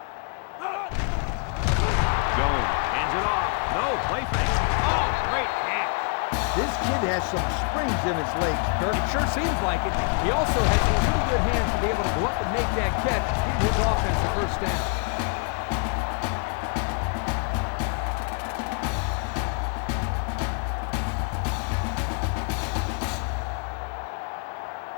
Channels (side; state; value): right; quieter; 37.6 dB